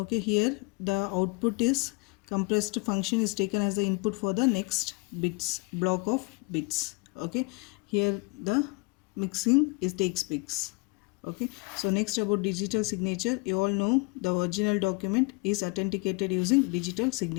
here the output is compressed function is taken as the input for the next bits, block of bits. Okay, here the mixing is takes bits. Okay, so next about digital signature. You all know the original document is authenticated using digital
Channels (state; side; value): quieter; right; 28.8 dB